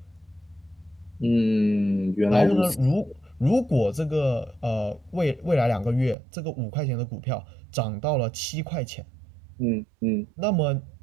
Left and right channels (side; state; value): left; drops out; at 6.2 s